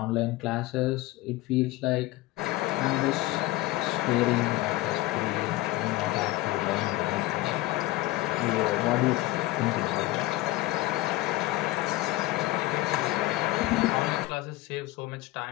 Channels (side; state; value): right; quieter; 18.5 dB